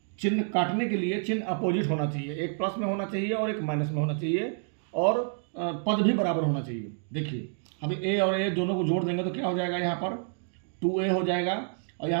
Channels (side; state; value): left; silent; digital silence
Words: चिन्ह काटने के लिए चिन्ह अपोजिट होना चाहिए, एक प्लस में होना चाहिए और एक माइनस में होना चाहिए, और पद भी बराबर होना चाहिए। देखिए अभी ए और ए दोनों को जोड़ देंगे तो क्या हो जाएगा, यहाँ पर 2a हो जाएगा, और